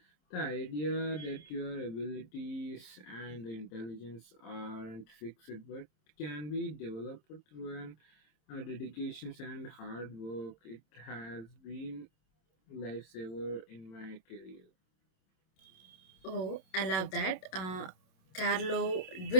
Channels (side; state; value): right; late; 27 ms